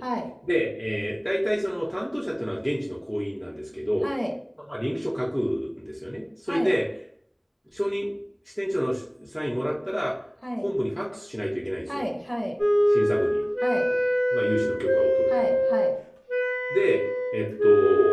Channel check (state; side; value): identical; both; correlation 1.00